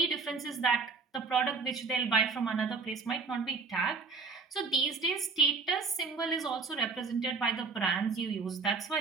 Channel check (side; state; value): left; quieter; 4.7 dB